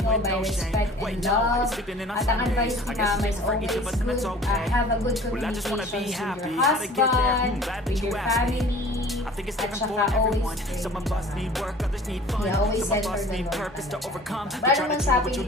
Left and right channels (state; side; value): normal; both; correlation 0.46